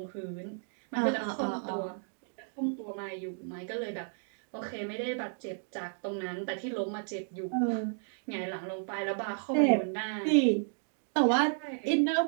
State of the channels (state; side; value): silent; left; digital silence